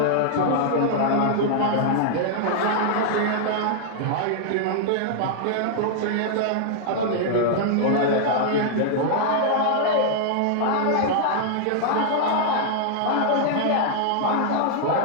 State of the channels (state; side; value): different; both; correlation -0.01